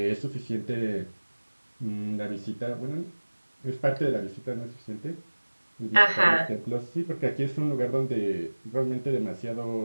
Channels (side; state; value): both; inverted; correlation -1.00